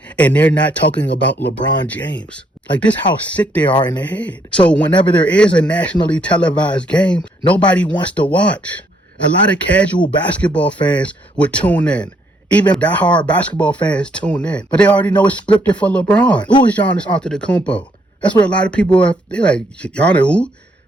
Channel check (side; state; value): both; normal; correlation 0.70